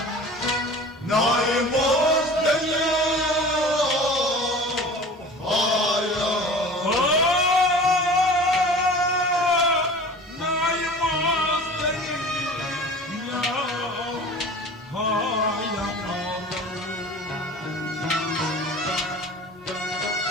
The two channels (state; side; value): normal; both; correlation 0.40